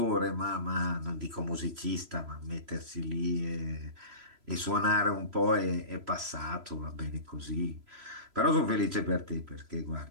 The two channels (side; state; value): left; late; 3.0 ms